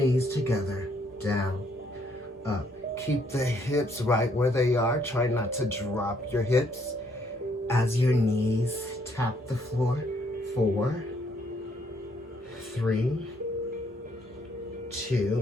together. Down. Up. Keep the hips right where they are. Try not to drop your hips as your knees tap the floor. 4, 3,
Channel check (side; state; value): both; normal; correlation 0.69